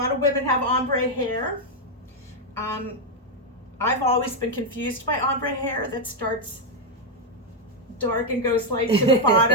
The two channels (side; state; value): both; normal; correlation 0.01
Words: of women have ombre hair. I've always been confused by ombre hair that starts dark and goes light to the